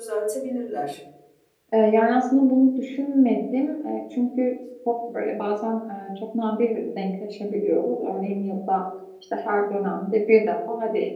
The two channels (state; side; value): identical; both; correlation 1.00